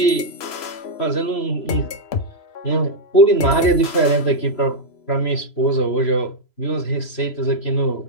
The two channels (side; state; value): right; late; 3.0 ms